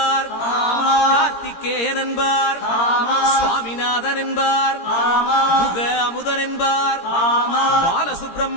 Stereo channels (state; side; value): late; right; 17 ms